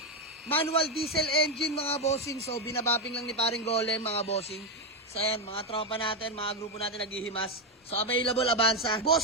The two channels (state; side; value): normal; both; correlation 0.07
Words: Manual diesel engine, mga bossing. So, binabapping lang ni paring Golem, mga bossing. So, ayan, mga tropa natin, mga grupo natin naghihimas. So, available, Avanza.